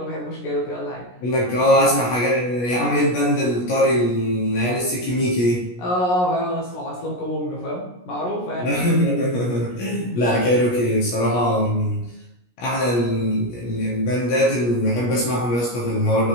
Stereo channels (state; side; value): late; right; 17 ms